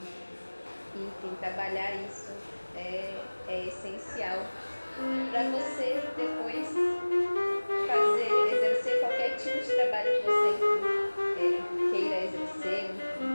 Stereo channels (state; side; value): inverted; both; correlation -1.00